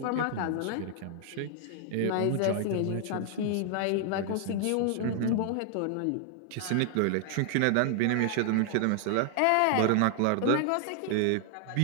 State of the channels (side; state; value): both; different; correlation 0.00